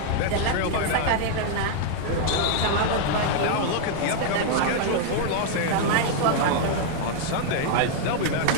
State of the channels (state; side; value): different; both; correlation -0.01